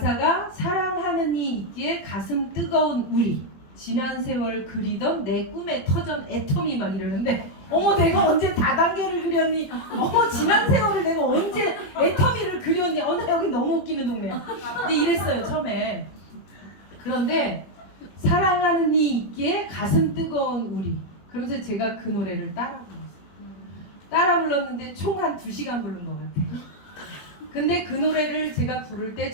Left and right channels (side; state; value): right; late; 21 ms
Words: 사랑하는 이 있기에 가슴 뜨거운 우리 지난 세월 그리던 내 꿈의 터전 애텀이 막 이러는데 어머 내가 언제 다단계를 그렸니? 어머 지난 세월을 내가 언제 애텀이를 그렸니? 나 여기 너무 웃기는 동네야. 근데 이랬어요 처음에. 그런데 사랑하는 이 있기에 가슴 뜨거운 우리 그러면서 제가 그 노래를 따라 불렀어요. 따라 불렀는데 총 한 2시간 부른 것 같아요. 근데 그 노래를 제가 부를 때